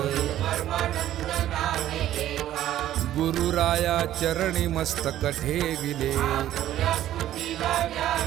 गुरुराया चरणी मस्तक ठेविले,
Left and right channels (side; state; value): left; quieter; 12.7 dB